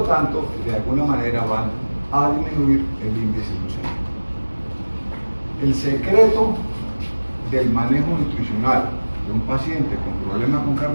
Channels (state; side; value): inverted; both; correlation -1.00